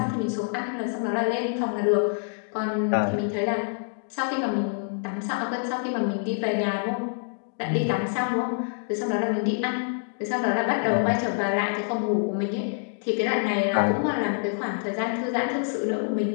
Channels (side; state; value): right; silent; digital silence